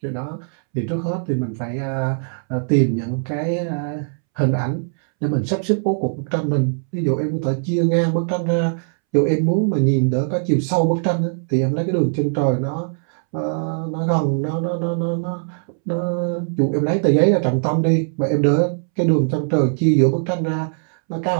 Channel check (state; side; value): silent; left; 65 dB below the other